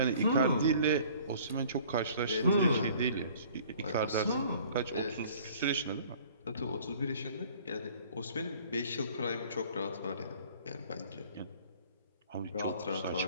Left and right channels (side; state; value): both; inverted; correlation -0.52